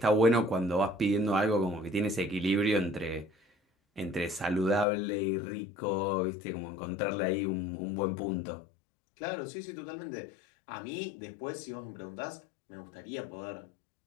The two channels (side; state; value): right; drops out; at 4.9 s